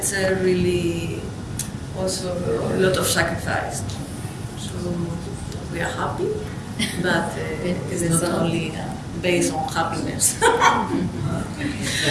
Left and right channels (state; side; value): identical; both; correlation 1.00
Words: really also a lot of sacrifice. So we are happy, but it is not only based on happiness.